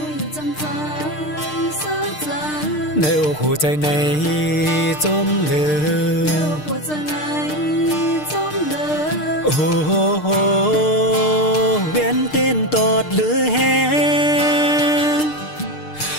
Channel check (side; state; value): right; late; 6.6 ms